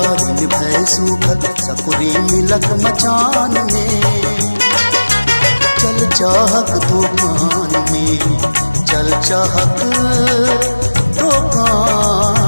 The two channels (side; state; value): both; inverted; correlation -1.00